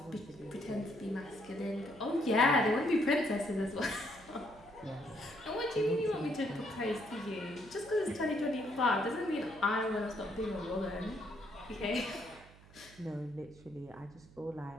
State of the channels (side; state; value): right; noise; hum, 22 dB below the sound